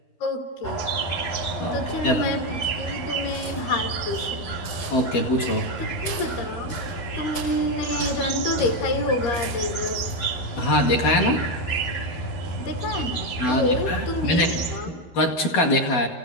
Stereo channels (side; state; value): right; late; 12 ms